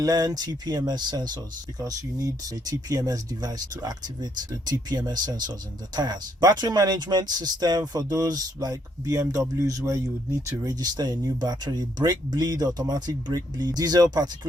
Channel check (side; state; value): both; normal; correlation 0.72